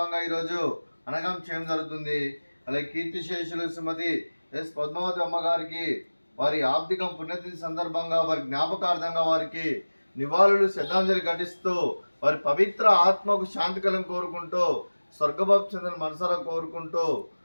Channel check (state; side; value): inverted; both; correlation -1.00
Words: ఈరోజు అనగం చేయడం జరుగుతుంది. అలాగే కీర్తిశేషులు శ్రీమతి ఎస్ పద్మావతి అమ్మగారికి వారి ఆర్థిక పుణ్యతిథి సందర్భంగా వారి జ్ఞాపకార్థంగా వారికి నివాళులు శ్రద్ధాంజలి ఘటిస్తూ వారి పవిత్ర ఆత్మకు శాంతి కలను కోరుకుంటూ స్వర్గభావ చంద్రుని మనసారా కోరుకుంటూ